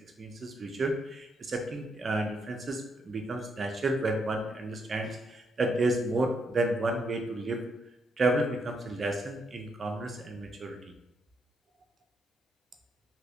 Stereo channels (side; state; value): both; normal; correlation 0.77